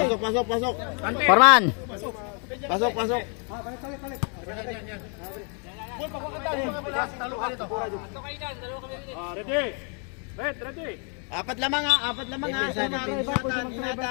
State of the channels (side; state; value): right; quieter; 39.9 dB